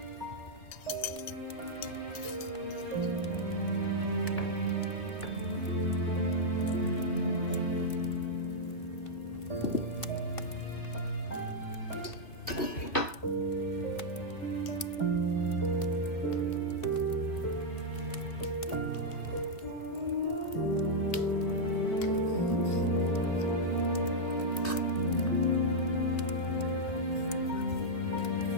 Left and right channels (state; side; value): late; right; 2.5 ms